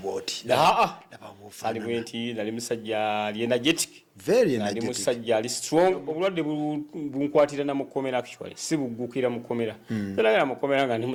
ali bwenti nali musajja ali energetic very energetic nali musajja ali strong obulwadde bunkwatira na mukomera actually si bugukira mukomera era mukomera nga ndi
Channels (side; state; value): both; identical; correlation 1.00